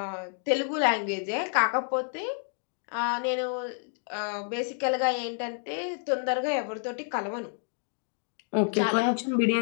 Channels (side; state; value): right; silent; 56 dB below the other